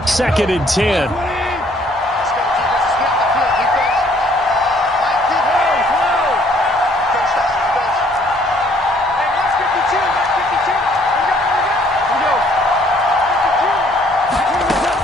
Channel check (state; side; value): normal; both; correlation 0.62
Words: Second and 10.